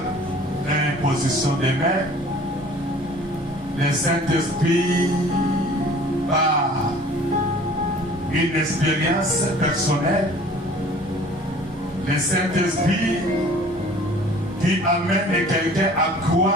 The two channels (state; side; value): normal; both; correlation 0.49